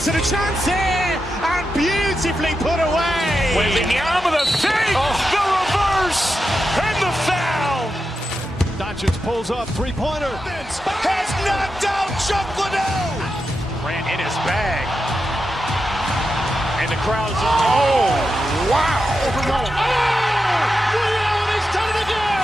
and a chance here, and beautifully put away. Wembanyama with a save, the reverse, and the foul. Doncic pulls up, three-pointer. Has knocked out Chuck Liddell. Grant in his bag. And the crowd's oh, wow. He's done it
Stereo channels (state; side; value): normal; both; correlation 0.88